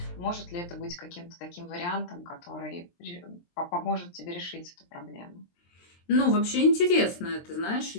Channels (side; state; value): right; late; 23 ms